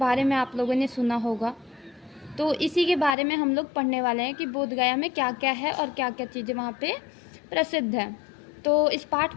में आप लोगों ने सुना होगा, तो इसी के बारे में हम लोग पढ़ने वाले हैं कि बोध गया में क्या क्या है और क्या क्या चीज़ें वहाँ पे प्रसिद्ध हैं। तो इस पाठ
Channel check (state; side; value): drops out; right; at 3.2 s